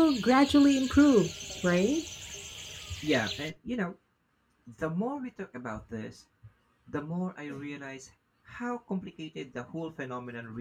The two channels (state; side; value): identical; both; correlation 1.00